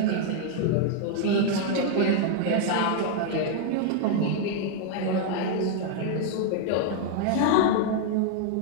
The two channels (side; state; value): both; different; correlation 0.00